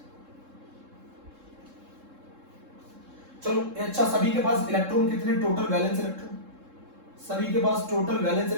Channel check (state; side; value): late; left; 3.7 ms